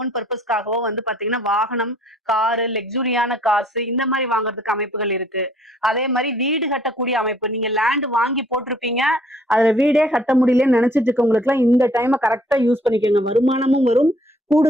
பர்பஸ்க்காகவோ வந்து பாத்தீங்கன்னா வாகனம், காரு, லக்ஸுரியான காசு இந்த மாதிரி வாங்குறதுக்கு அமைப்புகள் இருக்கு. அதே மாதிரி வீடு கட்டக்கூடிய அமைப்பு, நீங்க லேண்ட் வாங்கி போட்டிருப்பீங்க, அதுல வீடே கட்ட முடியலன்னு நினைச்சிட்டு இருக்கவங்களுக்கு எல்லாம் இந்த டைமை கரெக்டா யூஸ் பண்ணிக்கோங்க. வருமானமும் வரும்.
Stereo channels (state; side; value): normal; both; correlation 0.60